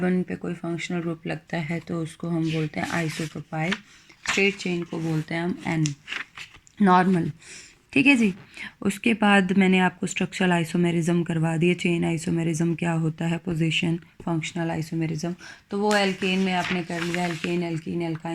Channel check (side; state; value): both; identical; correlation 1.00